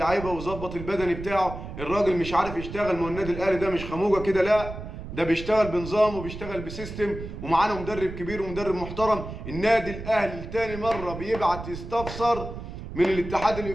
ويظبط البدني بتاعه. الراجل مش عارف يشتغل. ما هو النادي الاهلي ده مش خموجه كده، لا ده بيشتغل بنظام وبيشتغل بسيستم، ومعانا مدرب كبير ومدرب محترم. النادي الاهلي تاني مره بيبعت يستفسر من الاتحاد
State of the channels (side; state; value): right; noise; rumble, 10 dB below the sound